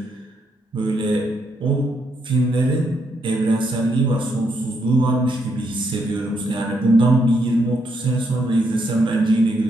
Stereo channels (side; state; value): both; normal; correlation 0.77